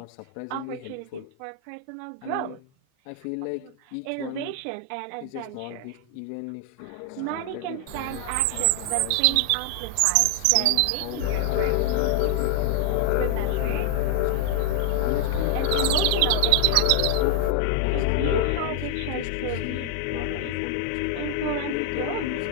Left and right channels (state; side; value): different; both; correlation 0.00